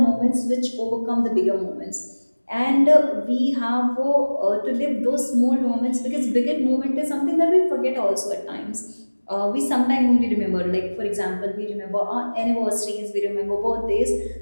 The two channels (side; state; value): both; inverted; correlation -1.00